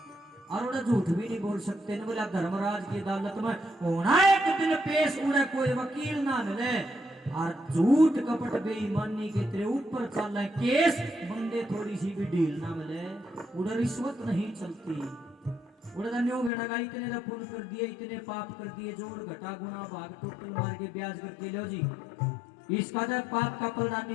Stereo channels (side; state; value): right; drops out; at 16.5 s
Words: और उन्हें झूठ भी नहीं बोल सकते। न बोला धर्मराज की अदालत में होना एक दिन पेश, उन्हें कोई वकील ना मिले, और झूठ कपट बेईमानी के तेरे ऊपर चल रहे केस, बंदे थोड़ी सी भी ढील ना मिले, उधर रिश्वत नहीं चलती। इतने पुण्य कर दिए, इतने पाप कर दिए, जोड़ घटा गुना भाग टोटल मार के ब्याज करके लो जी, इसका जब पाप का पलड़ा